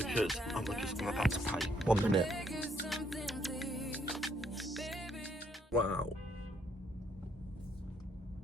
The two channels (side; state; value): both; normal; correlation 0.70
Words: I'm about to pay. 1 minute. Wow.